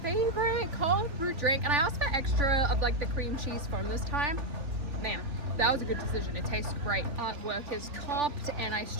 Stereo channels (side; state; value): left; late; 3.4 ms